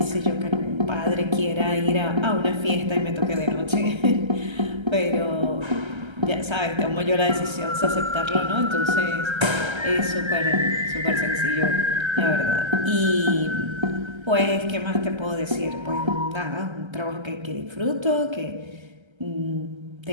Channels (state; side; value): late; left; 1.3 ms